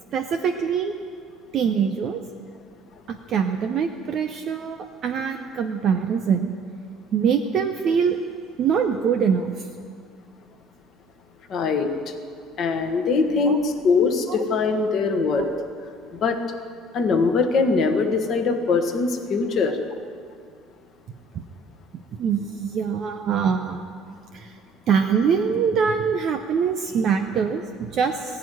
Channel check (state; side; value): normal; both; correlation 0.53